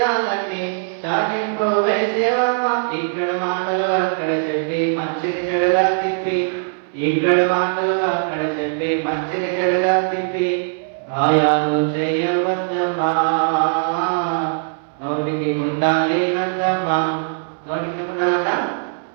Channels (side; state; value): left; silent; 64 dB below the other